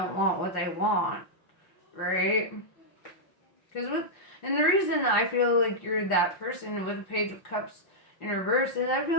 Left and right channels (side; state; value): right; late; 5.6 ms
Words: want what they want, right? And the reason I feel like you're that person with the Page of Cups in reverse is I